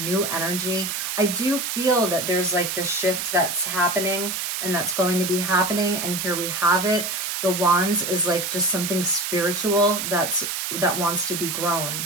energy. I do feel that there's like this shift that's happening and that's going to be happening. And here we have it. The Wands is like just something spiritual that wants to be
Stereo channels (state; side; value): noise; right; hiss, 3 dB below the sound